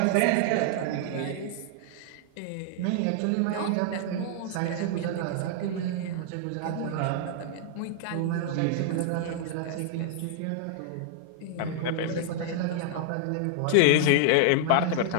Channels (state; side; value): different; both; correlation -0.01